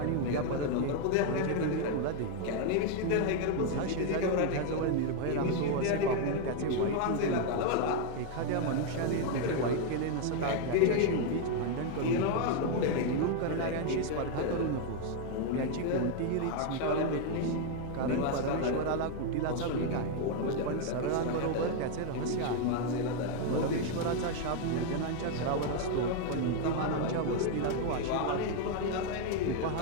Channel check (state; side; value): different; both; correlation 0.01